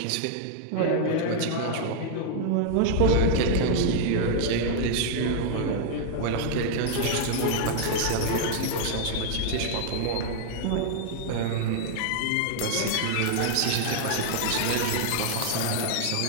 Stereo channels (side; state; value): both; different; correlation -0.01